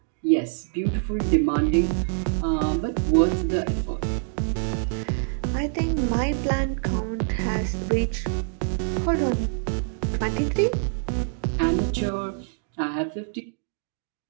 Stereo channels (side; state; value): left; silent; digital silence